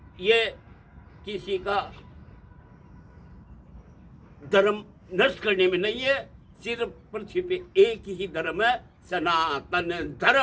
ये किसी का धर्म नष्ट करने में नहीं है, सिर्फ पृथ्वी पे एक ही धर्म है, सनातन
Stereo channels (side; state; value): both; identical; correlation 1.00